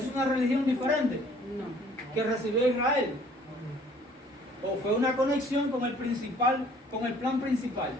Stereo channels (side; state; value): both; normal; correlation 0.56